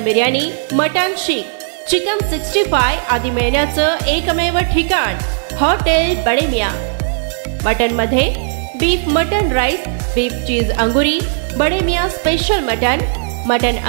biryani, mutton seekh, chicken 65 आदी मिळण्याचं एकमेव ठिकाण हॉटेल बडे मियां। मटन मध्ये beef mutton rice, beef cheese angoori, Bade Miyan special mutton, mutton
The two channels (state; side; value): silent; left; 69 dB below the other